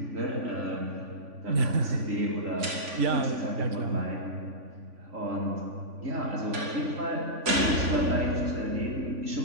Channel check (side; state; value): left; late; 3.5 ms